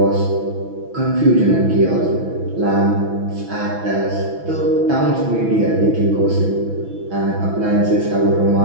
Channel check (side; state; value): left; late; 6.0 ms